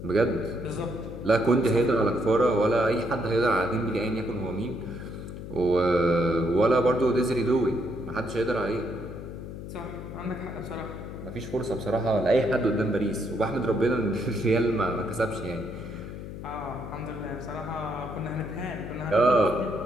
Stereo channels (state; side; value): noise; left; hum, 10 dB below the sound